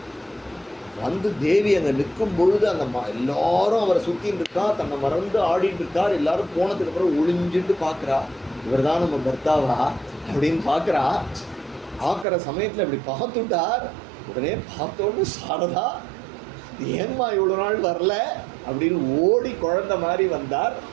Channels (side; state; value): left; drops out; at 12.2 s